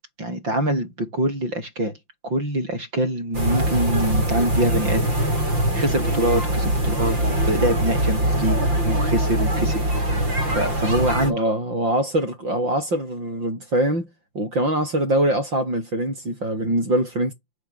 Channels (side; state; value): left; late; 5.8 ms